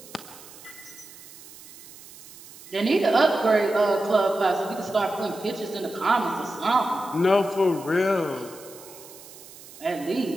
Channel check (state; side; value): noise; right; hiss, 19 dB below the sound